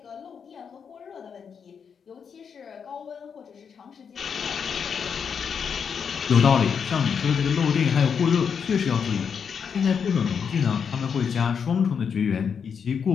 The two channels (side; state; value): right; quieter; 6.7 dB